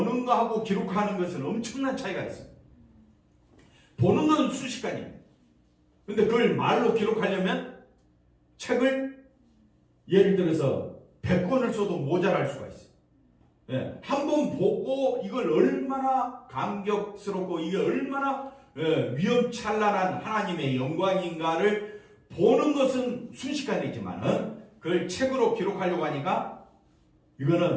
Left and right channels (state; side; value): identical; both; correlation 1.00